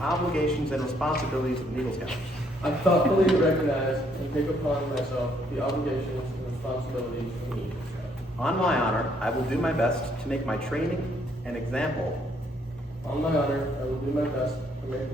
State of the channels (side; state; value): both; normal; correlation 0.68